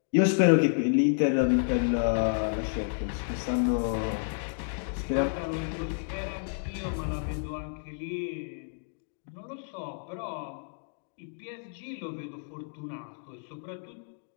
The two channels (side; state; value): right; silent; digital silence